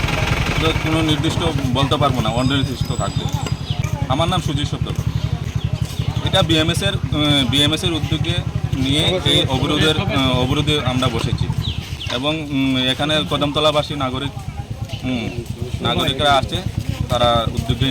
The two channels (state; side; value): identical; both; correlation 1.00